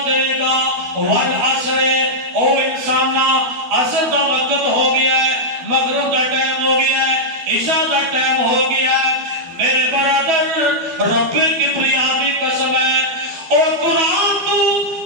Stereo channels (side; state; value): left; late; 12 ms